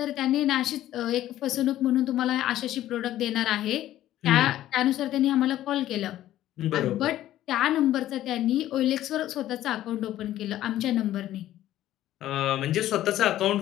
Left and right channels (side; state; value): right; quieter; 13.4 dB